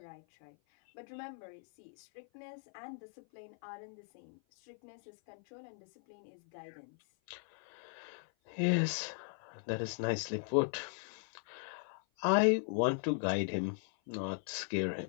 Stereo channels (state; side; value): silent; right; 52 dB below the other